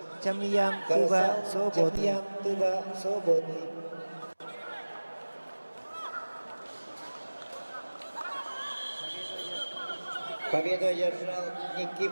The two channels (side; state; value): both; inverted; correlation -1.00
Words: Тямьян, Тыва, свободный. Победу одержал